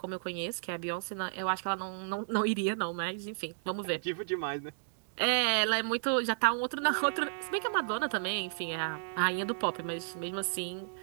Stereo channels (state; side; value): silent; left; digital silence